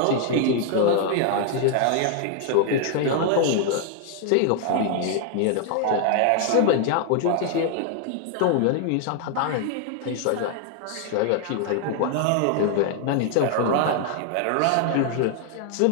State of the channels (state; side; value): different; both; correlation 0.00